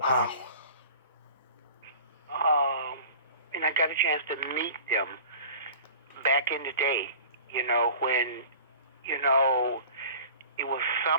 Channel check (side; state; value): both; inverted; correlation -0.42